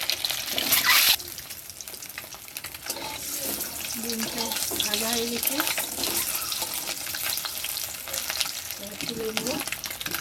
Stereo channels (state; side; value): identical; both; correlation 1.00